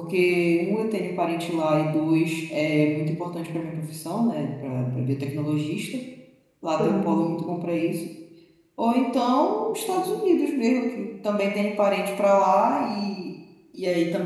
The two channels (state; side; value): identical; both; correlation 1.00